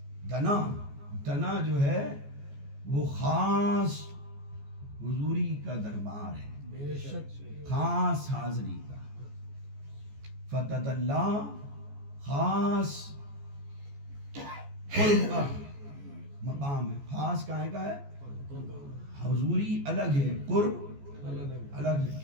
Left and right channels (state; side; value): late; left; 14 ms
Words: دنا, دنا جو ہے وہ خاص حضوری کا دربار ہے, خاص حاضری کا. فتدلا خاص قرب کا مقام ہے. خاص کہاں کا ہے؟ حضوری الگ ہے, قرب الگ ہے.